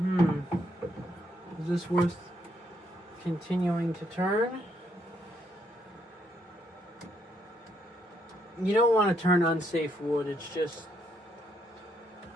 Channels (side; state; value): both; normal; correlation 0.74